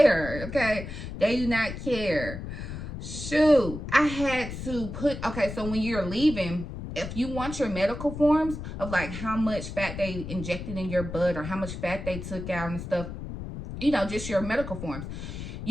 okay? They do not care. Shoot, I had to put, okay, so when you're leaving, if you want your medical forms of like how much fat they injected in your blood or how much fat they took out and stuff, you know, just your medical forms,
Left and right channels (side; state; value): left; noise; rumble, 8 dB below the sound